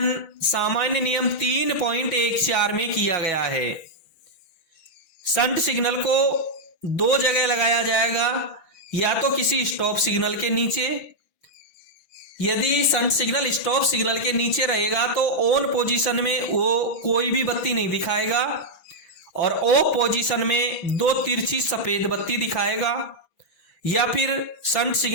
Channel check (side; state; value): right; late; 6.1 ms